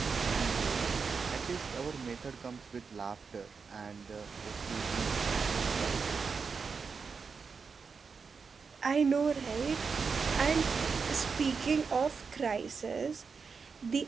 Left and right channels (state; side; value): quieter; left; 5.3 dB